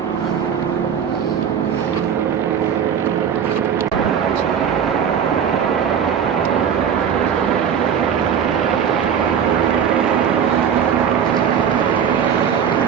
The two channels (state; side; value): quieter; left; 7.9 dB